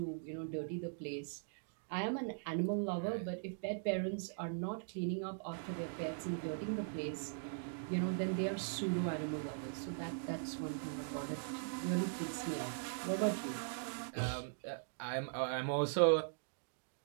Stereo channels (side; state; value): left; silent; digital silence